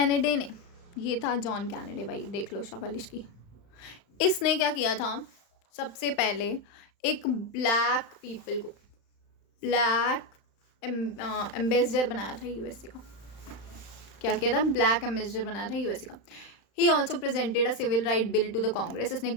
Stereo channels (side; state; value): right; late; 35 ms